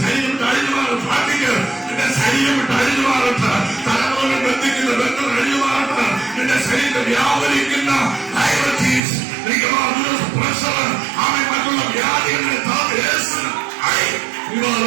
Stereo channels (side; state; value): left; drops out; at 9.0 s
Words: ശരീരം അഴിഞ്ഞു മാറും. പ്രാർത്ഥിക്കുക, നിന്റെ ശരീരം വിട്ട് അഴിഞ്ഞു മാറട്ടെ. തലമുറകൾ ബന്ധിക്കുന്ന ബന്ധം അഴിഞ്ഞു മാറട്ടെ. നിന്റെ ശരീരം വ്യാപരിക്കുന്ന ഡയബറ്റീസ്, പ്രഷർ, മറ്റുള്ള വ്യാധികളെ